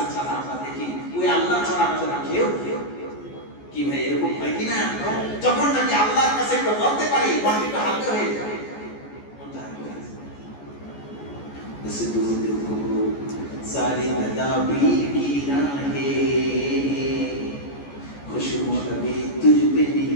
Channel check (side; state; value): right; late; 14 ms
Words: ছাড়া আমরা দেখি ওই আল্লাহ ছাড়া আমাদের কেউ কি ভাই এরকম হয় কিনা? যখন নাকি আল্লাহর কাছে একটু বলতে পারি মনটা হালকা হয়ে যায়। सारी तदाबीर की राहें खुशबू अभी तुझ पे